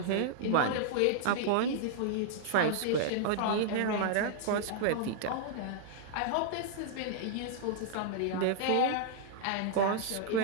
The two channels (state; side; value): different; both; correlation -0.01